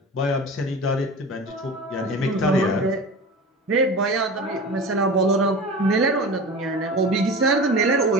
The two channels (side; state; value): both; normal; correlation 0.33